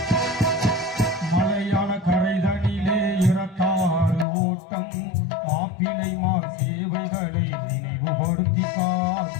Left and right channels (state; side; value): drops out; right; at 4.2 s